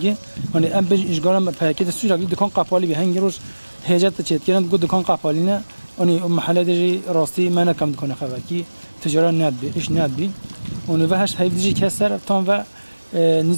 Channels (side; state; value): both; inverted; correlation -1.00